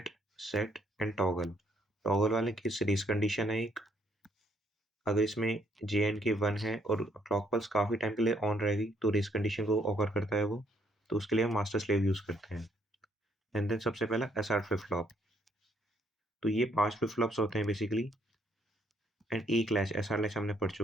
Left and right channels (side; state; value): both; normal; correlation 0.69